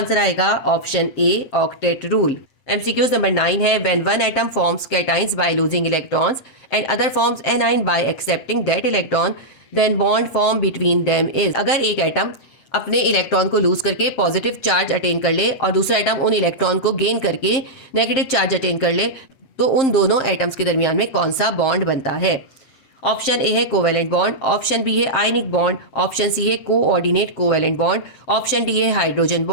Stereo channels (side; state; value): right; late; 7.6 ms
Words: आएगा option A octet rule. MCQ number 9 है, when one atom forms cations by losing electrons and other forms anion by accepting that electron then bond form between them is. अगर एक atom अपने electron को loose करके positive charge attain कर ले और दूसरा एटम उन इलेक्ट्रॉन को गेन करके नेगेटिव चार्ज अटेन कर ले तो उन दोनों एटम्स के दरमियान में कौन सा बॉन्ड बनता है? ऑप्शन ए है कोवेलेंट बॉन्ड, ऑप्शन बी है आयनिक बॉन्ड, ऑप्शन सी है coordinate covalent bond, option D है हाइड्रोजन